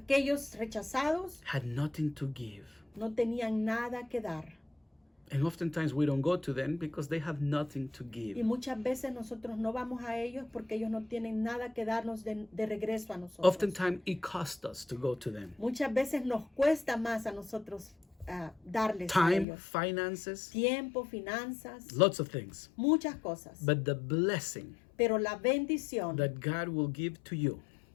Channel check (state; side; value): drops out; right; at 19.5 s